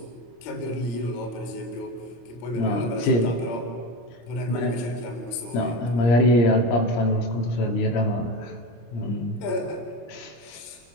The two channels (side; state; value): right; late; 25 ms